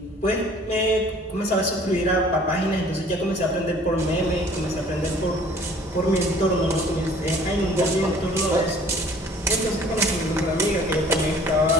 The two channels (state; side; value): normal; both; correlation 0.52